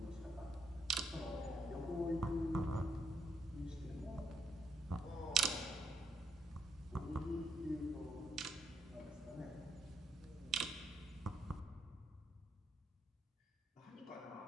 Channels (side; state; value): both; normal; correlation 0.74